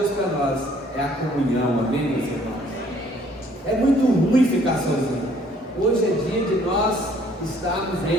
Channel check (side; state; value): both; normal; correlation 0.60